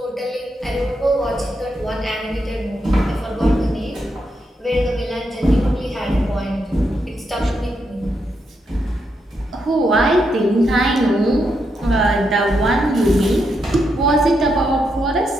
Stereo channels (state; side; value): normal; both; correlation 0.82